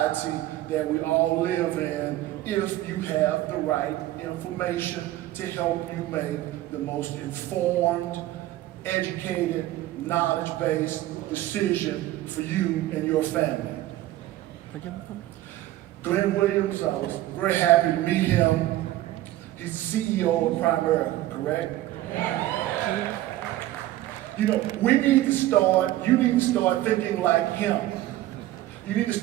that we all live in if you have the right information to help you make the most informed, educated, knowledge-based decision for you and your family. Glenn Williams, I was very happy to meet him. He's the CEO of Primerica, correct? You know, you need to start thinking like him. You need to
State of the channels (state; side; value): quieter; left; 15.3 dB